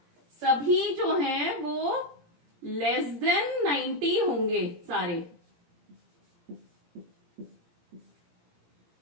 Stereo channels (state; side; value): late; left; 17 ms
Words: सभी जो हैं वो लेस देन 90 होंगे सारे।